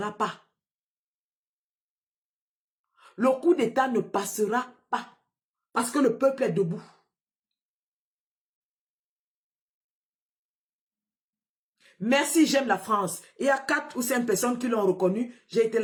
pas. Le coup d'État ne passera pas. Parce que le peuple est debout. Merci, j'aime la France. Il y a 4 ou 5 personnes qui l'ont reconnu. J'ai été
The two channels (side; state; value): both; identical; correlation 1.00